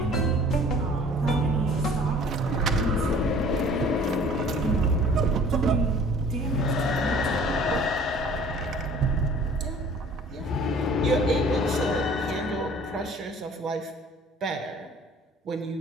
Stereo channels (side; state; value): both; normal; correlation 0.50